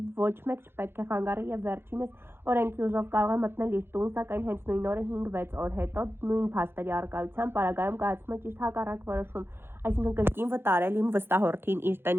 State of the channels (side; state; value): left; late; 0.11 ms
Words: ոչ մեկ չպետք է խանգարի և վերջինս օրենքի ուժով կարող է մտնել իր տուն, սակայն հենց նույն օրը 5-6 օր հետո նույն փաստերի առկայությամբ պարագայում կայացում է ճիշտ հակառակ որոշում, այսինքն կրկին վտարել իմ վստահորդին իր